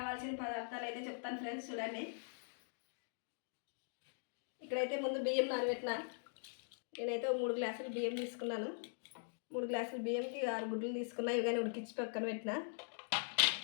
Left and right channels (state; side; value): silent; right; digital silence